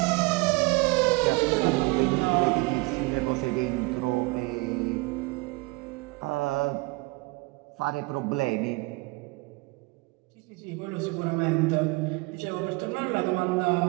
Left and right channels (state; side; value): quieter; left; 24.8 dB